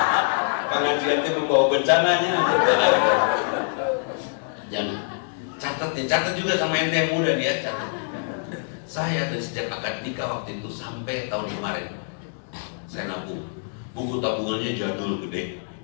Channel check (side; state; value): right; silent; digital silence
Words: Pengajian itu membawa bencananya. Jangan. Catat juga sama ente yang muda dia, catat. Saya dari sejak akad nikah waktu itu sampai tahun kemarin, saya nabung. Buku tabungannya jadul gede,